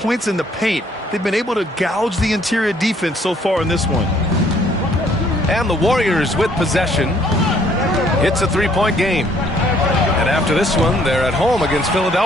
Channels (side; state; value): both; normal; correlation 0.63